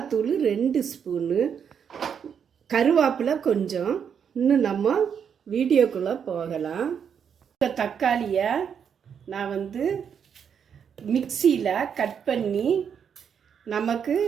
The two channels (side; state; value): left; quieter; 7.5 dB